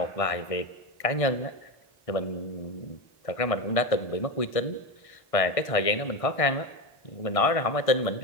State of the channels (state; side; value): late; right; 1.6 ms